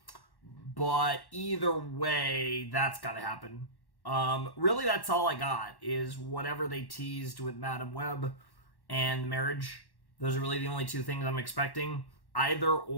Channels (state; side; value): late; right; 1.1 ms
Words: But either way, that's got to happen. Really, that's all I got, is whatever they teased with Madam Web and marriage. Those are really the only 2 things I'm expecting. Either